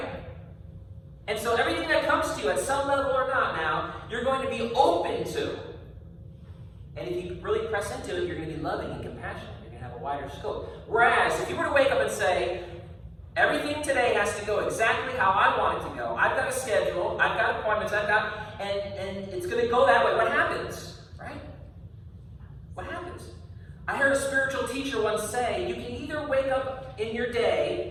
And so everything that comes to you at some level or not now, you're going to be open to. And if you really press into it, you're going to be loving and compassionate. You're going to have a wider scope. Whereas if you were to wake up and say, everything today has to go exactly how I want it to go. I've got a schedule. I've got appointments. and it's going to go that way. What happens? Right? What happens? I heard a spiritual teacher once say, you can either wake up in your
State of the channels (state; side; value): identical; both; correlation 1.00